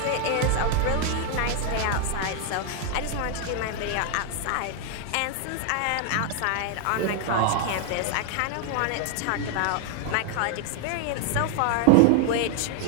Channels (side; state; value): both; different; correlation 0.00